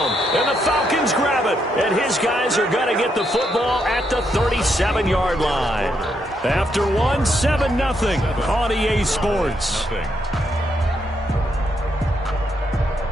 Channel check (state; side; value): normal; both; correlation 0.78